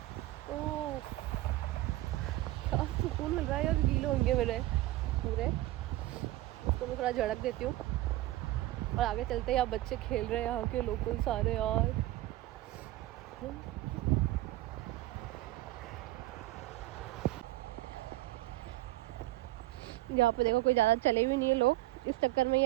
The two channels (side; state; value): left; quieter; 16.7 dB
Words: ओह क्या सुकून मिल रहा है यार, गीले होंगे मेरे पूरे। उसको मैं थोड़ा झड़क देती हूँ और आगे चलते हैं। यहाँ बच्चे खेल रहे हैं, यहाँ के लोकल सारे यार। यहाँ पे देखो कोई ज़्यादा चले भी नहीं है लोग, इस चक्कर में